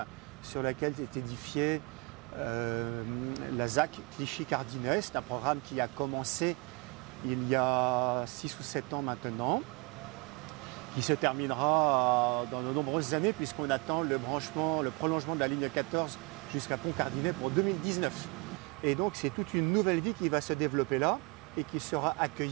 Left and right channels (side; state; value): left; quieter; 28.8 dB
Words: sur laquelle est édifiée la ZAC Clichy-Cardinet. C'est un programme qui a commencé il y a 6 ou 7 ans maintenant, qui se terminera dans de nombreuses années, puisqu'on attend le prolongement de la ligne 14 jusqu'à Pont-Cardinet pour 2019. Et donc c'est toute une nouvelle vie qui va se développer là et qui sera